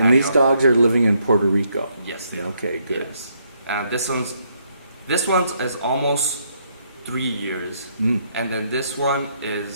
And these dogs are living in Puerto Rico? Yes. They are. Okay, good. Yes. This one's is almost 3 years, Mm, and then this one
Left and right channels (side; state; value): both; inverted; correlation -0.73